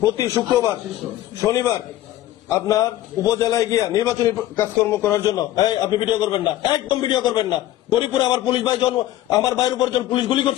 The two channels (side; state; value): right; quieter; 14.2 dB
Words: প্রতি শুক্রবার শনিবার আপনার উপজেলায় গিয়া নির্বাচনী কাজকর্ম করার জন্য আপনি ভিডিও করবেন না, একদম ভিডিও করবেন না। গরিপুরে আমার পুলিশ ভাই আমার ভাইয়ের উপর যখন পুলিশ গুলি